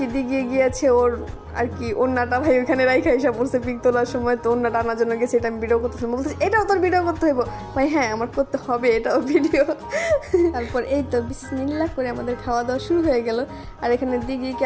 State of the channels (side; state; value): both; identical; correlation 1.00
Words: দিকে গিয়েছে ওর আর কি ওন্নাটা ভাই ওইখানে রাইখা এসে পড়ছে পিক তোলার সময়। তো ওন্নাটা আনার জন্য গেছে, এটা আমি ভিডিও করতেছিলাম, বলতেছি এটাও তোর ভিডিও করতে হইব ভাই। হ্যাঁ আমার করতে হবে এটাও ভিডিও। তারপর এই তো বিসমিল্লাহ করে আমাদের খাওয়া দাওয়া শুরু হয়ে গেল। আর এখানে দিঘিকে